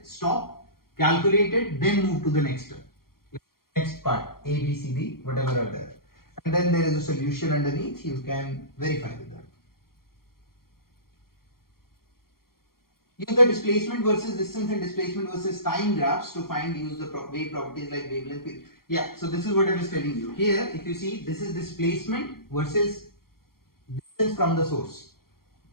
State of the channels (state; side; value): late; right; 0.93 ms